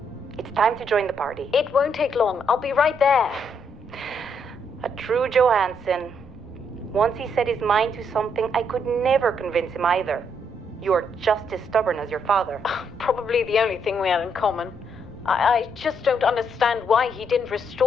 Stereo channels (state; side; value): normal; both; correlation 0.74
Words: it's time to join the party. It won't take long. I'll be right there. A true Johanson. Once he set his mind to something, I could never convince him either. You're just as stubborn as your father. Probably the only thing we had in common. I just don't understand why he didn't